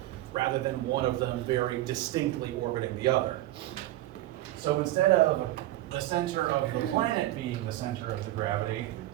rather than one of them very distinctly orbiting the other. So instead of the center of the planet being the center of the gravity,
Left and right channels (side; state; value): left; quieter; 15.8 dB